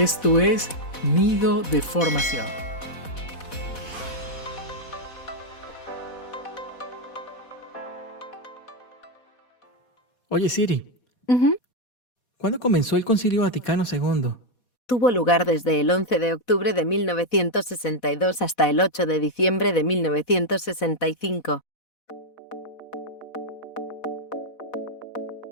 es Nido de Formación. Oye Siri, ¿cuándo comenzó el Concilio Vaticano II? Tuvo lugar desde el 11 de octubre de 1962 hasta el 8 de diciembre de 1965.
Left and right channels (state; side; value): late; right; 4.1 ms